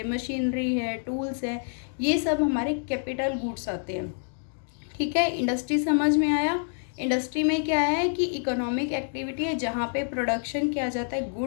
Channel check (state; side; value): silent; right; digital silence